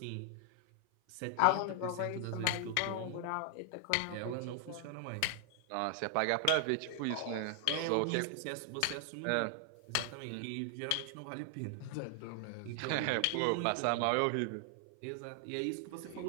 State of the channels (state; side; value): different; both; correlation 0.00